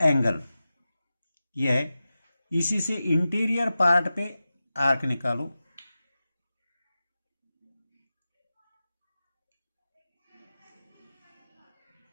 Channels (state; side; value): inverted; both; correlation -0.94